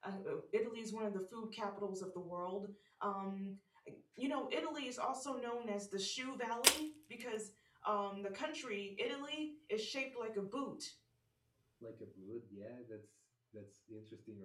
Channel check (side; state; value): both; identical; correlation 1.00